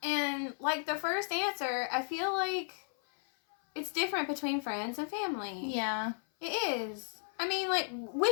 And like the first answer, I feel like it's different between friends and family. Yeah. It is. I mean, like,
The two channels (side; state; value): right; silent; 55 dB below the other